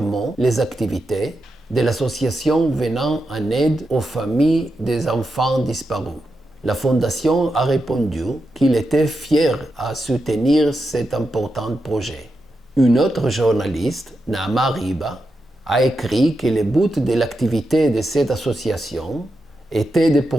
les activités de l'association venant en aide aux familles des enfants disparus. La fondation a répondu qu'il était fier à soutenir cet important projet. Une autre journaliste, Naama Riba, a écrit que le but de l'activité de cette association était de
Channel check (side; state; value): both; normal; correlation 0.87